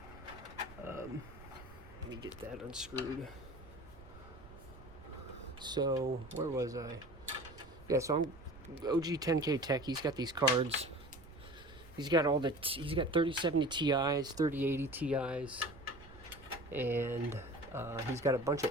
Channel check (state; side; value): noise; right; rumble, 18 dB below the sound